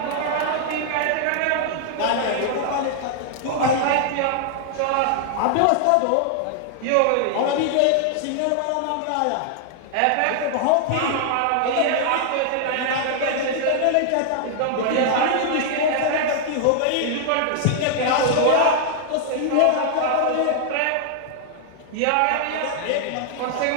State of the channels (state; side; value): different; both; correlation 0.00